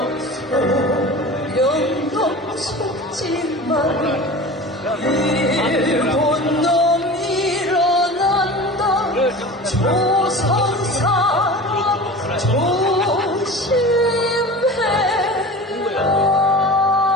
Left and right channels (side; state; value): both; normal; correlation 0.35